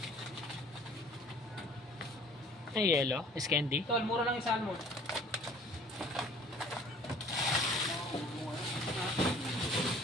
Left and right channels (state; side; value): normal; both; correlation 0.51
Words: Ay, yellow? Is candy? Tol, mura lang yung salmon.